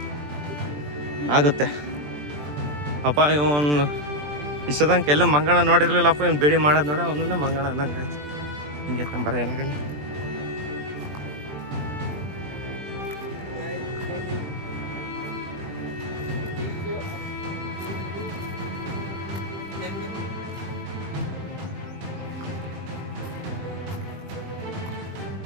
ಆಗುತ್ತೆ ಅಪ್ಪ. ಇವನು ಇಷ್ಟದಂಗೆ ಎಲ್ಲ ಮಂಗಣ ನೋಡಿರ್ಲಿಲ್ಲಪ್ಪ, ಇವ್ನು ಬೇಡಿ ಮಾಡೋದು ನೋಡ ಅವನನ್ನ ಮಂಗಣ ಅಂದಂಗೆ ಆಯ್ತು. ಹಿಂಗೆ ತಂಬರ ಏನಾಗಲ್ಲ.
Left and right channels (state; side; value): late; left; 20 ms